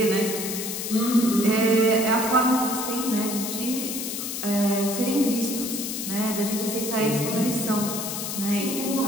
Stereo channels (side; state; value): left; noise; hiss, 5 dB below the sound